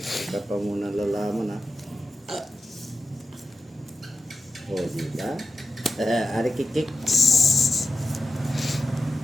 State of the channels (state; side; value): normal; both; correlation 0.92